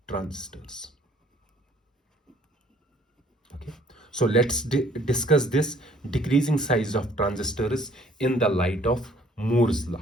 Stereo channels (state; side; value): normal; both; correlation 0.59